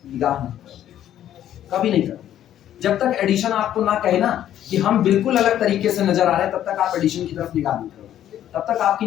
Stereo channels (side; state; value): right; quieter; 11.4 dB